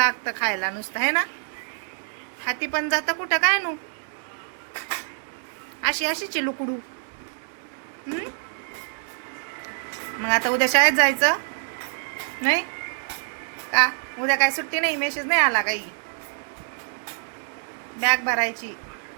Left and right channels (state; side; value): silent; left; 61 dB below the other